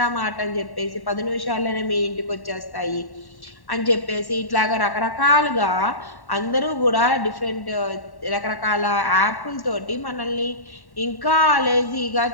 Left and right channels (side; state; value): right; late; 1.1 ms